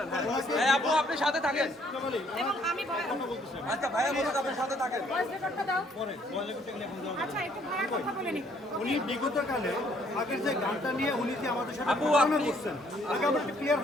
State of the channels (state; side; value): normal; both; correlation 0.65